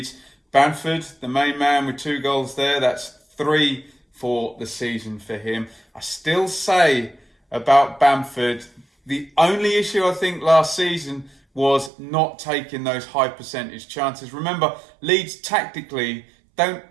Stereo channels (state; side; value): drops out; left; at 11.9 s